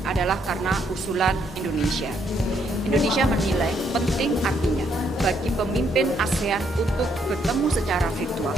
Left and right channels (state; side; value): normal; both; correlation 0.73